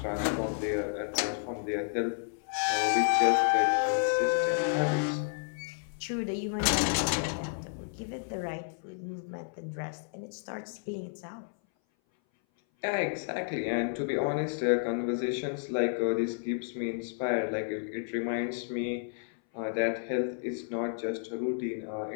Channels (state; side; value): silent; right; 57 dB below the other